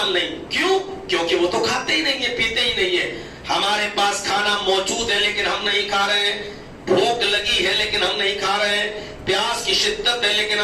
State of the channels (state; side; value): identical; both; correlation 1.00